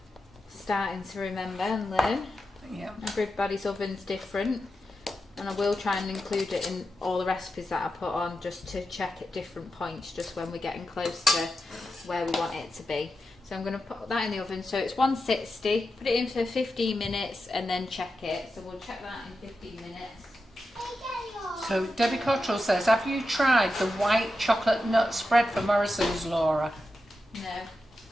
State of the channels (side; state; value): both; normal; correlation 0.89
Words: starting to remember and learn. Yeah. Everybody's oven's different, and I will try and include it in all the recipes that I put on, just to check at different points, just when we're getting close to where we want it to be. So I'm going to put that in the oven. So it's 160, put it in for 15 minutes and then check it. So we'll check that in 15 minutes. So Debbie Cottrell says, have you tried the white chocolate nut spread for Morrison's, Laura?